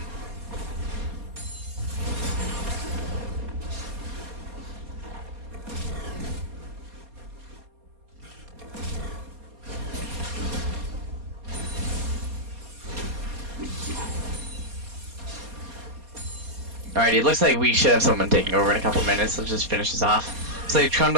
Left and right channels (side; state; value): left; late; 4.2 ms